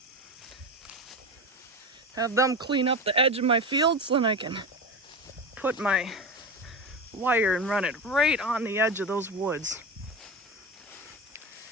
Have them clean up the edge of my field so then I can put my wire and run it right on the edge of those woods.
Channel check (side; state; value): both; normal; correlation 0.23